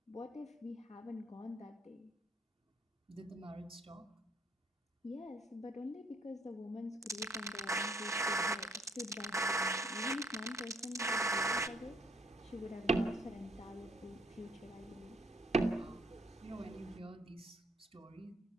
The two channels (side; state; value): both; normal; correlation 0.66